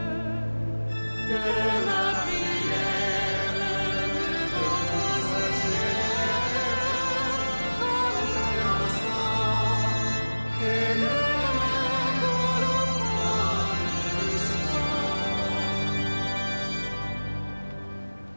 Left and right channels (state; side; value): inverted; both; correlation -1.00